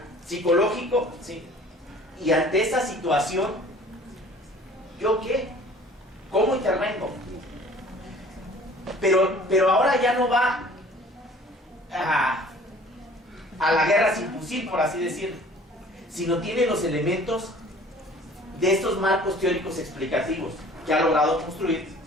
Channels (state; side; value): normal; both; correlation 0.50